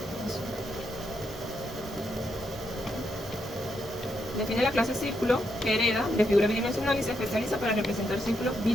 Define la clase círculo que hereda de figura bidimensional y se especializa para representar círculos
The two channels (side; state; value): both; normal; correlation 0.80